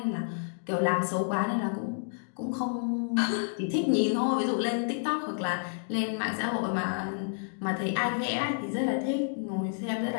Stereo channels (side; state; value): right; silent; digital silence